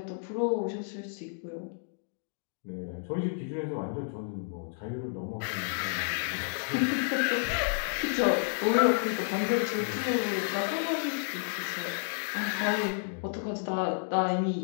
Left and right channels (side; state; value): right; silent; digital silence